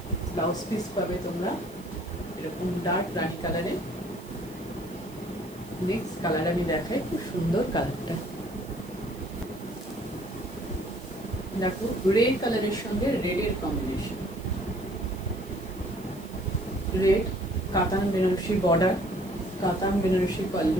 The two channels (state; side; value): noise; right; hiss, 22 dB below the sound